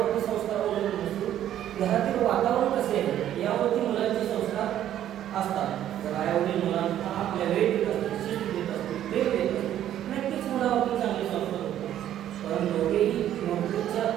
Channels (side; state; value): left; quieter; 11.5 dB